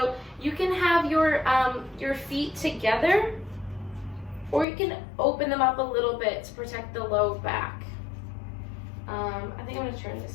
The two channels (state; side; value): drops out; right; at 4.7 s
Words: you can have your feet together, or you can open them up a little bit to protect the low back. I think I'm going to turn